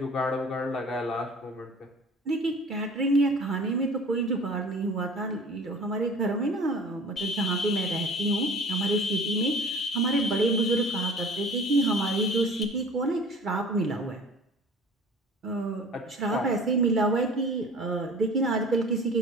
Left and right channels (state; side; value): normal; both; correlation 0.44